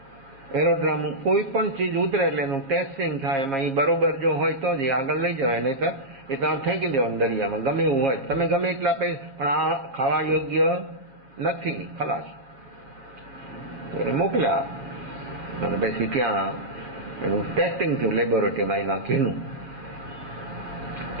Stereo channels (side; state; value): left; late; 7.3 ms